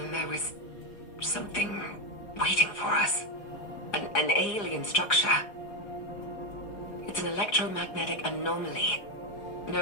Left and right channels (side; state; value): right; late; 4.9 ms